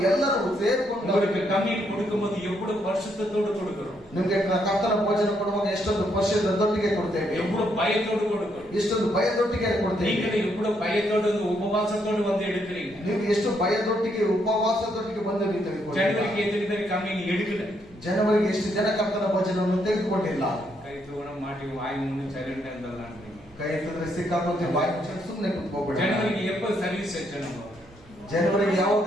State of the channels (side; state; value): right; noise; hum, 28 dB below the sound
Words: ಎಲ್ಲರೂ ಸೇರಿಕೊಂಡು உங்களுக்கு கம்மியன் கொடுக்கும்போது எவ்வளவு வருஷத்தோடு கொடுக்கிறோம், ನಿಮ್ಗೆ ಕರ್ತನ ಭೋಜನ ಕೊಡುವಾಗ ಎಷ್ಟೊಂದು ವರ್ಷದೊಟ್ಟಿಗೆ ಕೊಡ್ತೇವೆ, எவ்வளவு பயத்தோடு கொடுக்கிறோம். ಎಷ್ಟೊಂದು ಭಯದೊಟ್ಟಿಗೆ ಕೊಡ್ತೇವೆ. நீங்களும் எவ்வளவு பயத்தோடு உபவாசத்தோடு வந்து எடுக்கிறீங்க. ನೀವು ಎಷ್ಟು ಭಯದೊಟ್ಟಿಗೆ ಉಪವಾಸದೊಟ್ಟಿಗೆ ಬಂದು ஜனவரிக்கு எத்தனை பேர் கம்மியன் எடுக்கல? ಜನವರಿಗೆ ಎಷ್ಟು ಜನ ಕರ್ತನ ಭೋಜನವನ್ನು ತೆಗೆದುಕೊಂಡಿಲ್ಲ? கை தூண மாட்டி வாய் மூணு சைலண்ட் இருந்தலாம். ಕೈ ಎತ್ತಿದ್ರೆ ಸಿಕ್ಕಾಕೊಂತೀವಿ, ಬಾಯಿ ಮುಚ್ಚಿ ಸುಮ್ಮನೆ ಕುತ್ಕೋಬೇಡ. ஜனவரிக்கு எப்ப சர்வீஸ் வச்ச நம்ம? ಜನವರಿಗೆ ಯಾವಾಗ